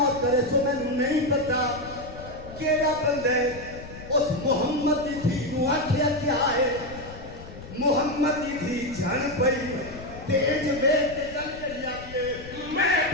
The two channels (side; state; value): left; noise; rumble, 15 dB below the sound